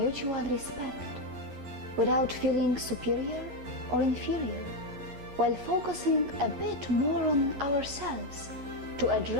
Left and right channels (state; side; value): late; left; 11 ms